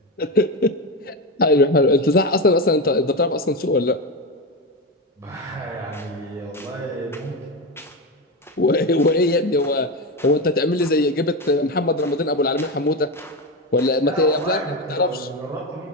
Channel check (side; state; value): both; normal; correlation 0.16